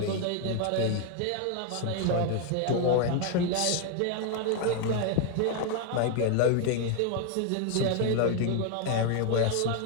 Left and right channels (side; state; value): both; different; correlation 0.01